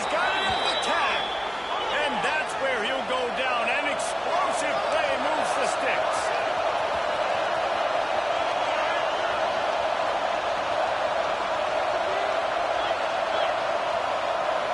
got it on the tag. And that's where he'll go down. An explosive play moves the sticks.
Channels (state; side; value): identical; both; correlation 1.00